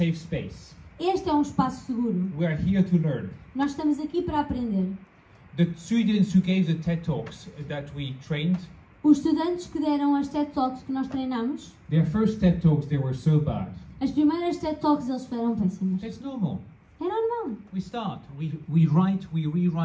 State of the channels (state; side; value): identical; both; correlation 1.00